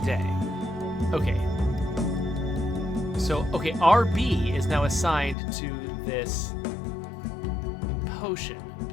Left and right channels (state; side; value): drops out; right; at 5.4 s